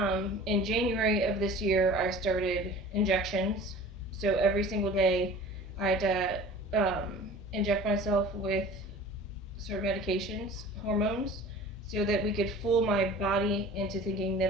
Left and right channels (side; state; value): right; noise; rumble, 26 dB below the sound